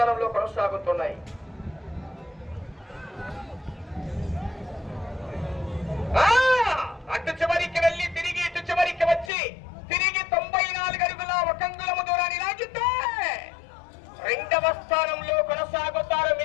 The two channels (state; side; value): drops out; right; at 9.3 s